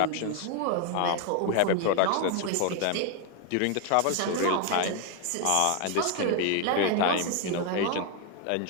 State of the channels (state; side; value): different; both; correlation 0.01